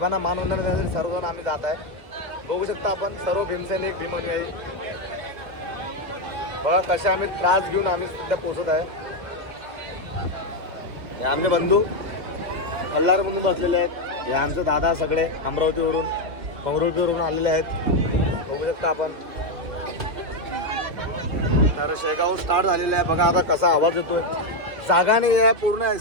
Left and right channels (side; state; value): left; late; 2.7 ms